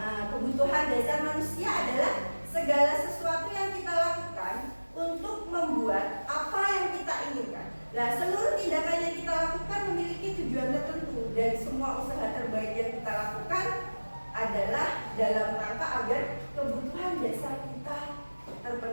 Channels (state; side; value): inverted; both; correlation -1.00